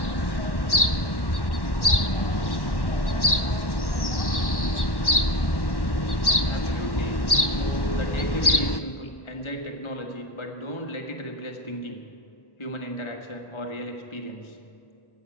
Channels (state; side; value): late; right; 1.1 ms